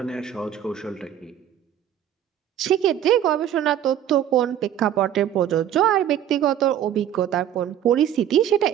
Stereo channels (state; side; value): quieter; left; 10.5 dB